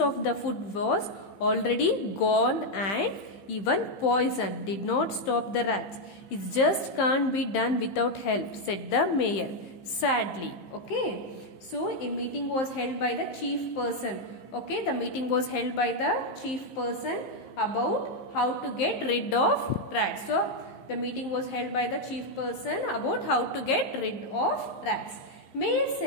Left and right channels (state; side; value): late; right; 15 ms